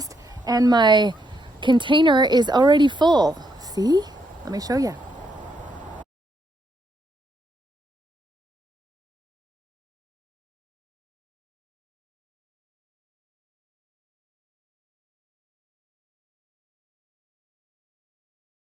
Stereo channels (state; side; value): normal; both; correlation 0.77